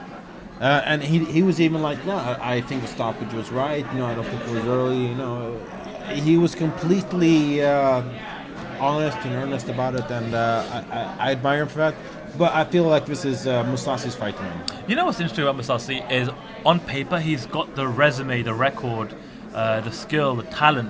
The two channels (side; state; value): both; identical; correlation 1.00